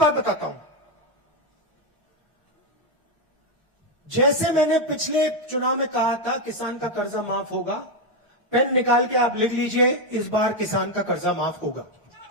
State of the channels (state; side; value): normal; both; correlation 0.05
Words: बताता हूं। जैसे मैंने पिछले चुनाव में कहा था किसान का कर्जा माफ होगा, पेन निकाल के आप लिख लीजिए, इस बार किसान का कर्जा माफ होगा।